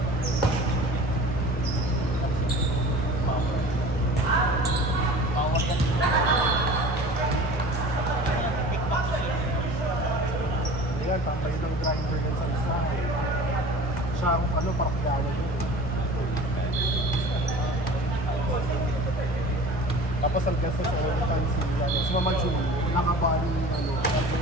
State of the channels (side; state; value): both; normal; correlation 0.41